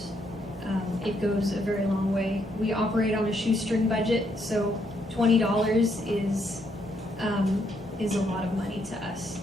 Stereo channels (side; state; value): both; normal; correlation 0.74